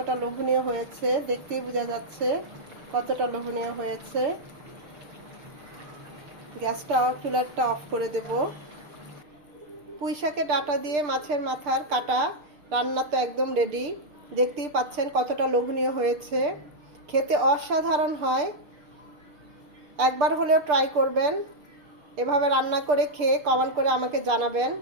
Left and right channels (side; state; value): left; late; 6.7 ms